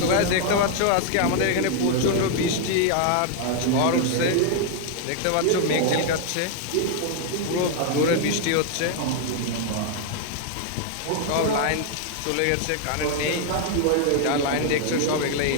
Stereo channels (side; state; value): both; different; correlation 0.00